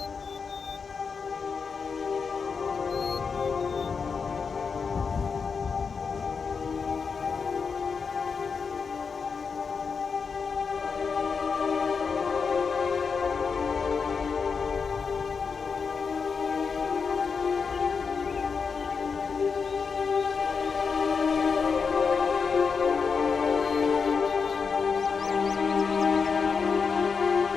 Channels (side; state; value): right; quieter; 5.5 dB